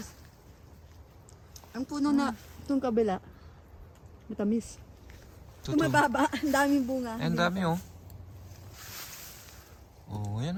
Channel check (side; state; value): both; identical; correlation 1.00